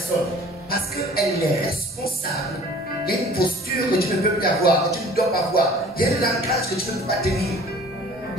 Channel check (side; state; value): both; normal; correlation 0.49